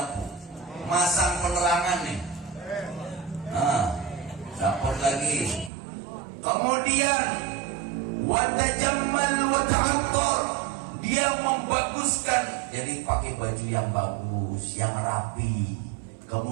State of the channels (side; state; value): left; drops out; at 5.7 s